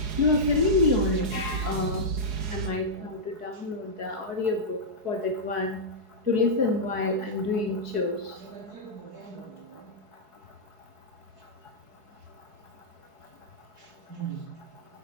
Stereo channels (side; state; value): left; late; 4.8 ms